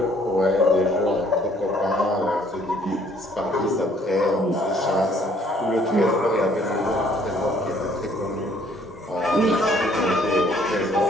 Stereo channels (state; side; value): normal; both; correlation 0.61